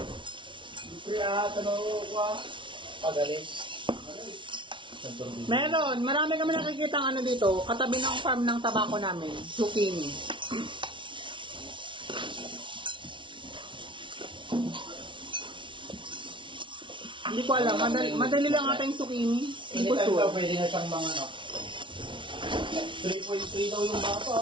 Kaya, tanong ko, pagalis. Meron, marami kami nakikita ano dito, katabi ng farm ng tabako namin, zucchini. Hindi ko alam, madali lang ata yung zucchini. Hindi ko Anytime sure. daw, pwede na siyang mga ano. 3.3 daw yung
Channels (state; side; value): late; left; 0.24 ms